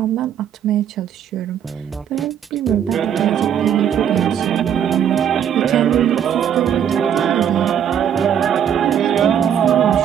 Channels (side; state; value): left; quieter; 9.0 dB